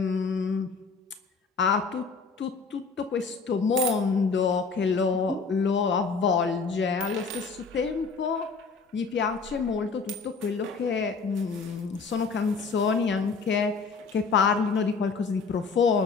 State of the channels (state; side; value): quieter; right; 4.8 dB